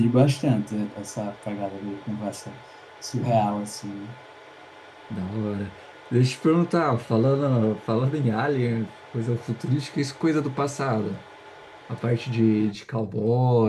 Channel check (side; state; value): both; identical; correlation 1.00